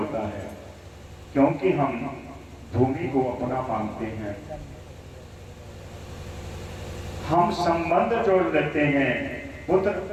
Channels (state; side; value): identical; both; correlation 1.00